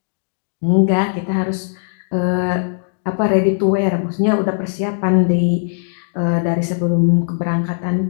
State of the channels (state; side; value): silent; right; digital silence